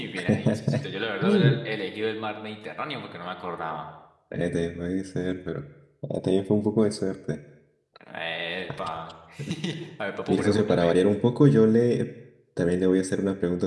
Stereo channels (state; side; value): identical; both; correlation 1.00